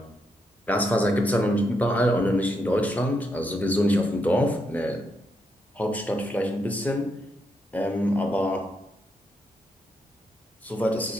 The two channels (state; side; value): normal; both; correlation 0.80